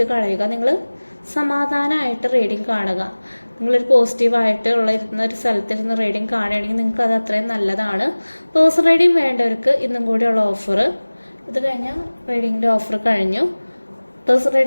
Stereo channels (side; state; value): both; inverted; correlation -1.00